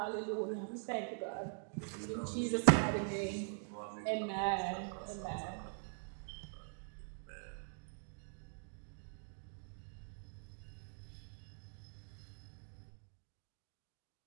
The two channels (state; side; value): silent; left; digital silence